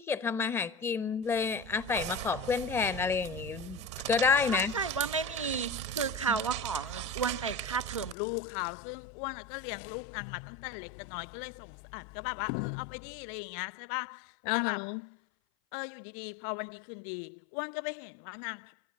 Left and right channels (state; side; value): drops out; right; at 8.2 s